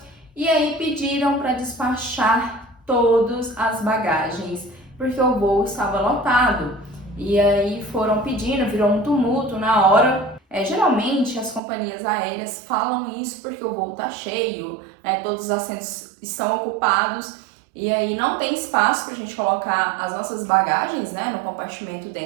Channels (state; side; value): drops out; left; at 11.6 s